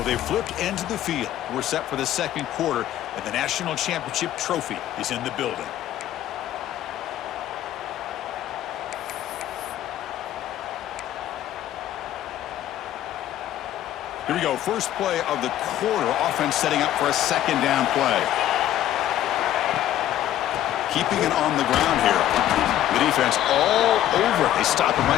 they've flipped into the field. We're set for the second quarter, and the national championship trophy is in the building. Here we go. First play of the quarter. Offense setting up for a second down play. Keeping it on the ground here. The defense all over it. They stop him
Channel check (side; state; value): right; quieter; 12.5 dB